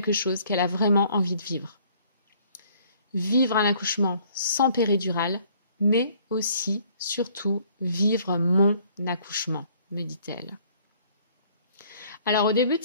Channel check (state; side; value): inverted; both; correlation -0.59